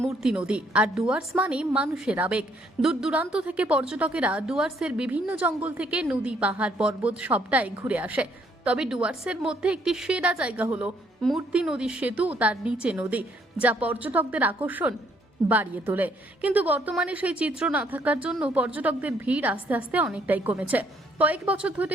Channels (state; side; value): normal; both; correlation 0.67